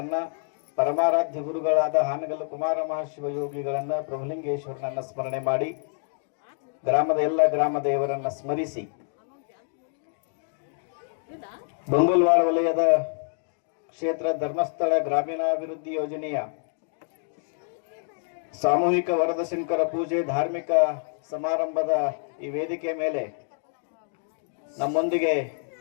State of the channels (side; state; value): right; silent; 60 dB below the other